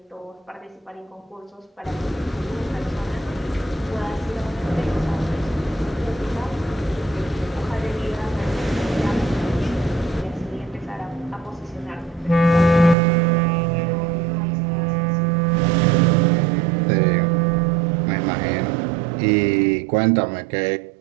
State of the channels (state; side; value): drops out; left; at 13.0 s